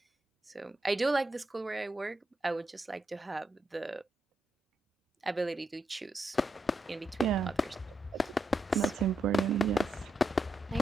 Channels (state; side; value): normal; both; correlation 0.83